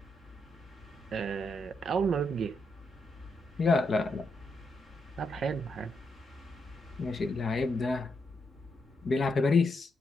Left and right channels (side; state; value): both; normal; correlation 0.81